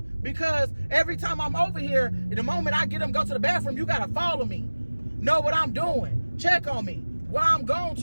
because every time I'm over here, the moment I get them go to the bathroom, you gotta follow me. Know what I'm doing. Check on me. Why I'm gone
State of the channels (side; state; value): both; inverted; correlation -1.00